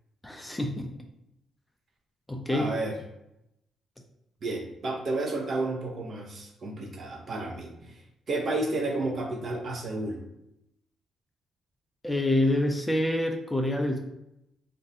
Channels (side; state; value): both; normal; correlation 0.77